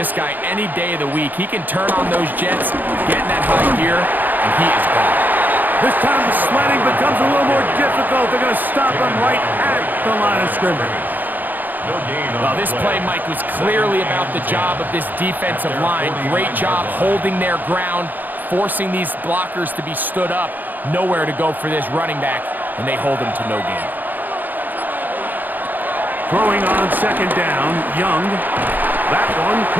guy any day of the week. He can turn on those jets, get in that high gear, and he is gone. This time the sledding becomes a little more difficult. They're going to stop him right at the line of scrimmage. Well, this play, Mike, was clearly about the job of this defensive line. Great job holding their ground, forcing these blockers to be stood up. Nowhere to go for this running back, and they hold him to no gain. Throwing on second down, Young. That one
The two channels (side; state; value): left; late; 0.086 ms